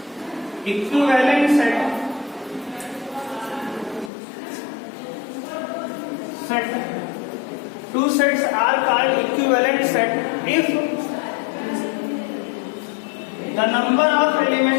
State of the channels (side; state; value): right; drops out; at 4.1 s